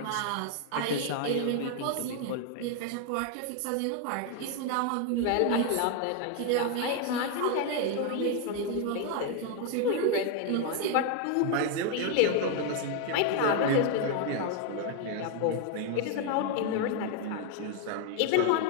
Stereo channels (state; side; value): different; both; correlation 0.01